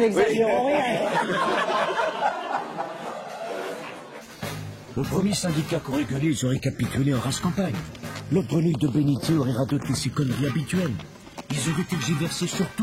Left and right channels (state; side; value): identical; both; correlation 1.00